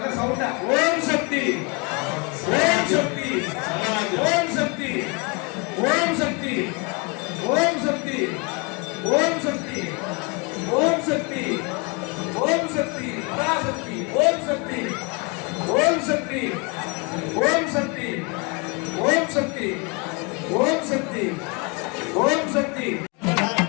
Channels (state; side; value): quieter; right; 31.2 dB